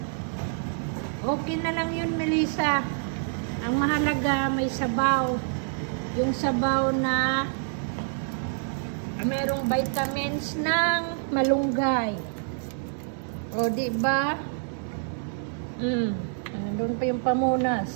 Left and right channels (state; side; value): silent; left; digital silence